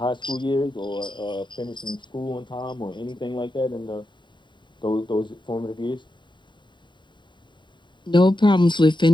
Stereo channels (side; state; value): right; late; 0.23 ms